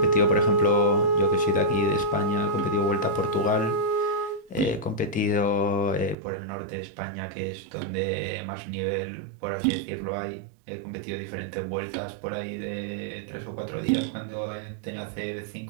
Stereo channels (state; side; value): drops out; left; at 6.2 s